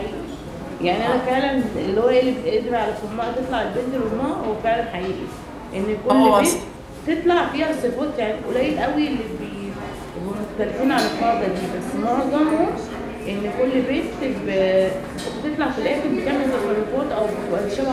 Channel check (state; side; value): identical; both; correlation 1.00